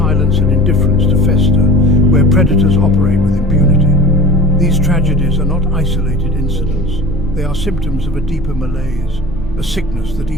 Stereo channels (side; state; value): both; normal; correlation 0.39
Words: and indifference to fester, where predators operate with impunity. These tragedies are not isolated incidents. They are symptoms of a deeper malaise, a sickness that